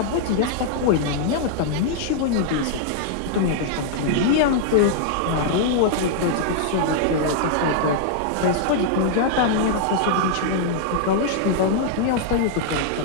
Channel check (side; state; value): both; different; correlation -0.01